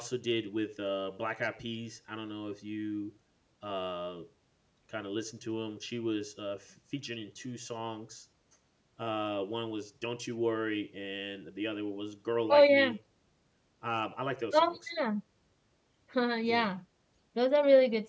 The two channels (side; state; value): both; identical; correlation 1.00